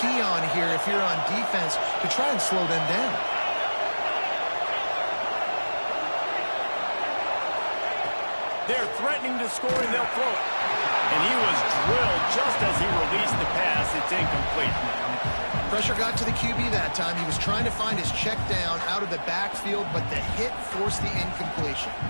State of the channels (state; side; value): inverted; both; correlation -1.00